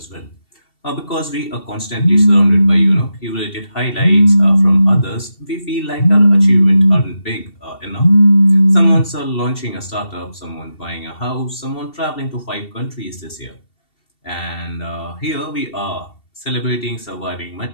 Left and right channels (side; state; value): right; late; 2.7 ms